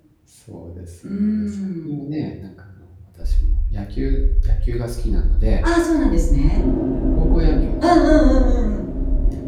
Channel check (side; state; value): both; identical; correlation 1.00